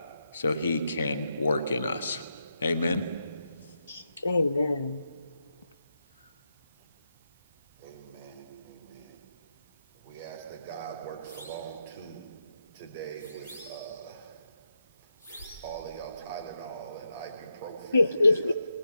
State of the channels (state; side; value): inverted; both; correlation -0.85